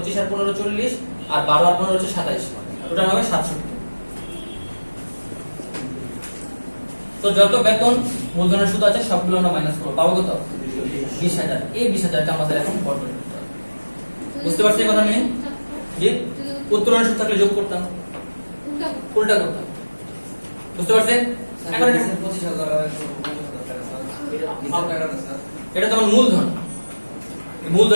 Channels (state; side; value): inverted; both; correlation -1.00